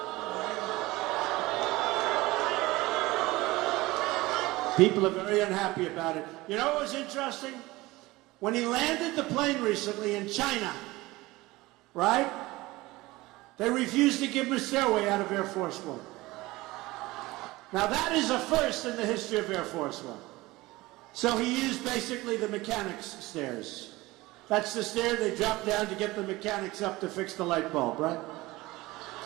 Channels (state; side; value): quieter; left; 20.0 dB